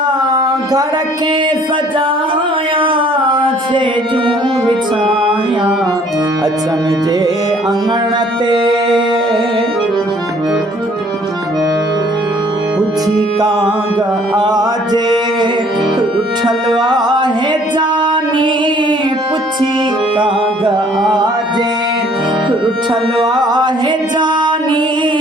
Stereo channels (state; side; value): normal; both; correlation 0.58